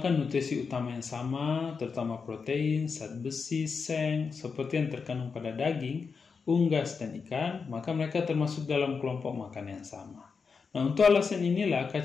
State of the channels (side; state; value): right; quieter; 5.3 dB